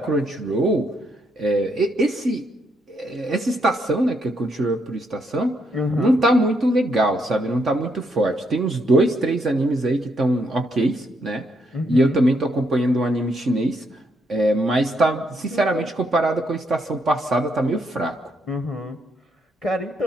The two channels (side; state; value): both; normal; correlation 0.76